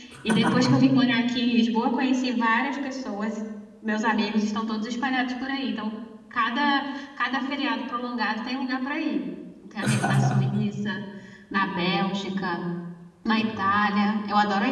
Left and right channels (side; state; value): both; identical; correlation 1.00